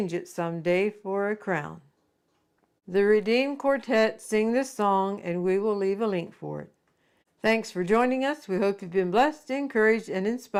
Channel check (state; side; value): identical; both; correlation 1.00